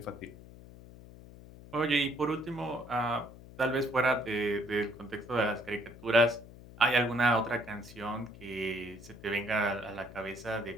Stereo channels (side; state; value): left; noise; hum, 18 dB below the sound